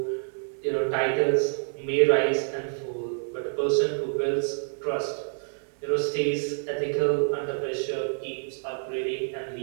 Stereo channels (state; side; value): silent; left; 60 dB below the other